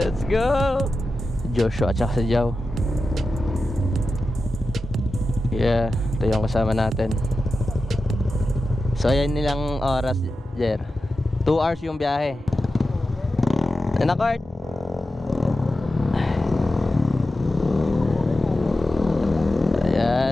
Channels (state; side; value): normal; both; correlation 0.92